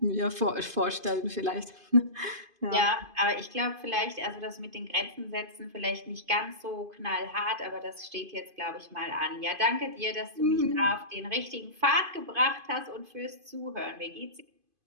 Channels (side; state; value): left; late; 2.5 ms